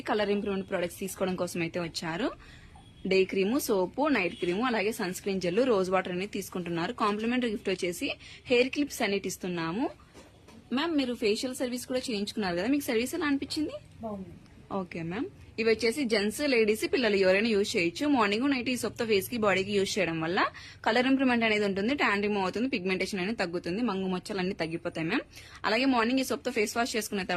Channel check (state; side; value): identical; both; correlation 1.00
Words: కలర్ ఇంప్రూవ్మెంట్ ప్రొడక్ట్స్ తీసుకోవడం కోసం అయితే వచ్చారు. Day cream, soap, night cream, అలాగే sun screen gel, rose water అనేది తీసుకుంటున్నారు. కాంప్లిమెంటరీ గిఫ్ట్ వచ్చేసి హెయిర్ క్లిప్స్ అనేది ఇస్తున్నాము. మ్యామ్ మీరు ఫేషియల్ సర్వీస్ కూడా చేయించుకున్నారు కదా, మీకు సర్వీస్ ఎలా అనిపించింది? Okay ma'am. ఇవి వచ్చేసి జెంట్స్, లేడీస్, పిల్లలు ఎవరైనా యూజ్ చేయొచ్చు. మార్నింగ్ నైట్ ఈ సోప్ తో ఫేస్ కి, బాడీకి యూజ్ చేయడం వల్ల కలర్ ఇంప్రూవ్మెంట్ అనేది ఉంటుంది, ట్యాన్ రిమూవ్ అవుతుంది, పిగ్మెంటేషన్ అనేది తగ్గుతుంది, మంగు మచ్చలు అన్ని తగ్గిపోతాయి మ్యామ్. అలాగే మార్నింగ్ ఈ సోప్ తో ఫేస్ వాష్ చేసుకున్న